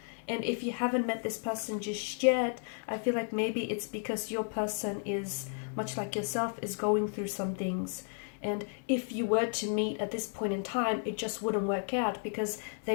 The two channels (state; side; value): silent; right; 56 dB below the other